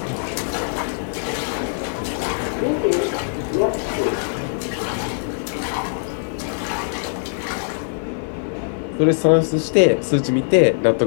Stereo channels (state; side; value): silent; right; digital silence